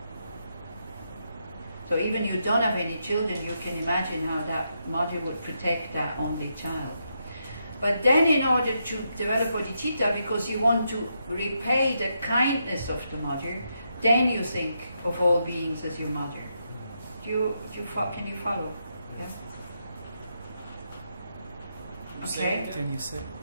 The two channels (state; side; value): inverted; both; correlation -0.82